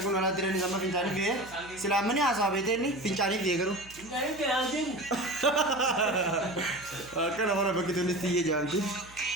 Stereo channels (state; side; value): noise; right; hum, 22 dB below the sound